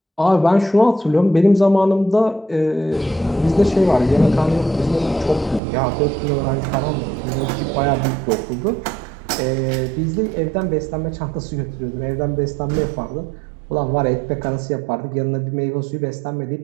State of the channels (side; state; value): left; drops out; at 5.6 s